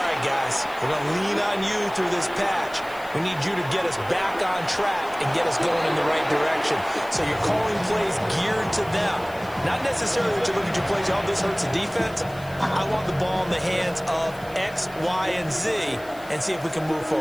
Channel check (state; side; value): noise; left; hiss, 22 dB below the sound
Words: right, guys, we're going to lean on you through this patch. We need you to get us back on track and get us going in the right direction. So you're calling plays geared to them. Not necessarily that you look at your plays, oh, this hurts the defense. I want the ball in the hands of X, Y, and Z and see if we can move